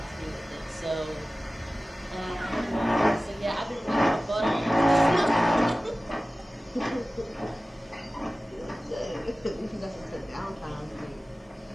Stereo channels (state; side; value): normal; both; correlation 0.96